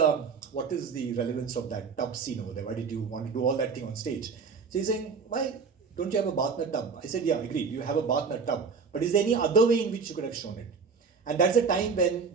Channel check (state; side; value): quieter; left; 5.3 dB